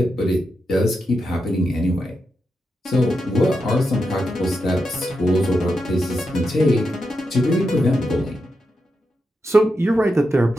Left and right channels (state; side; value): normal; both; correlation 0.86